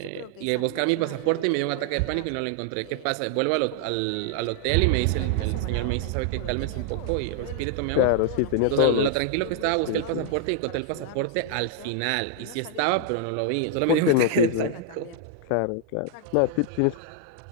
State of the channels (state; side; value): different; both; correlation 0.00